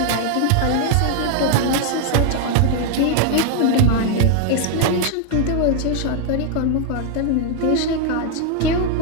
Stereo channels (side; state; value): both; different; correlation 0.00